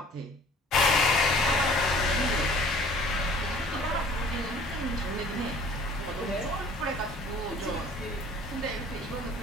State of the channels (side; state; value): both; normal; correlation 0.51